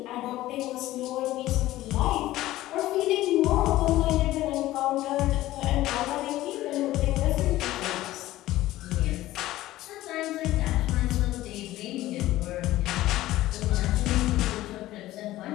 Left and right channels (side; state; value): right; quieter; 15.8 dB